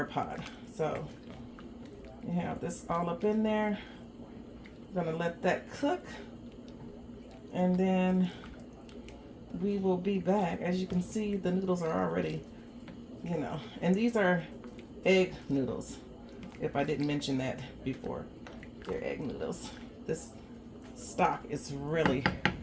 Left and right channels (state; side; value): identical; both; correlation 1.00